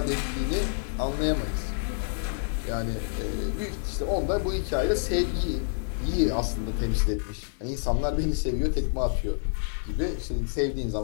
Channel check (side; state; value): right; silent; digital silence